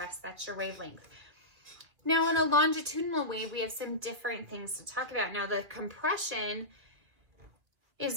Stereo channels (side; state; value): left; late; 2.5 ms